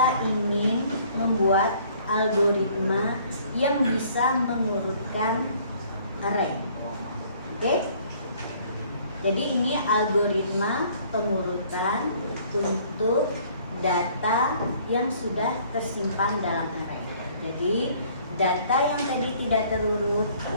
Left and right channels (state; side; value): inverted; both; correlation -0.58